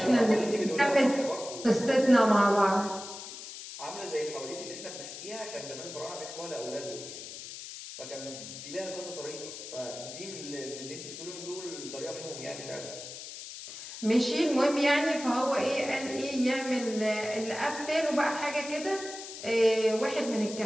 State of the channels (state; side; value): noise; left; hiss, 11 dB below the sound